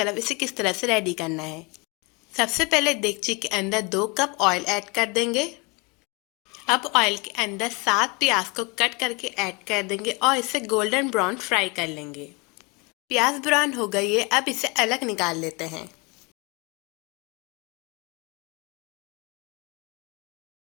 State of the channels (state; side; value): quieter; right; 28.2 dB